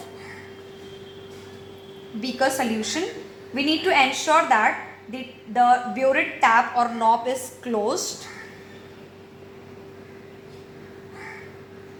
beaker solution. We need to ensure that the burette tap or knob is closed.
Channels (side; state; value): both; identical; correlation 1.00